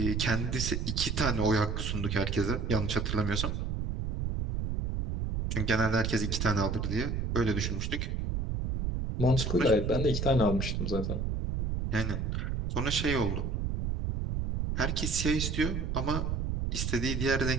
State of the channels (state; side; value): noise; right; rumble, 1 dB below the sound